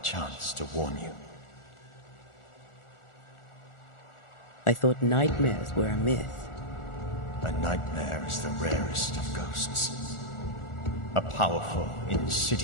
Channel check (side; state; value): right; late; 1.4 ms